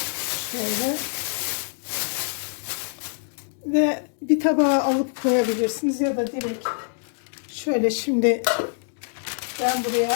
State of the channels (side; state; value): right; silent; digital silence